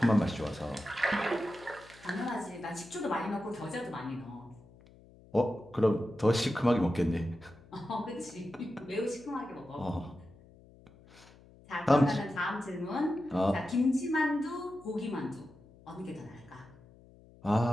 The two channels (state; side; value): noise; left; hum, 24 dB below the sound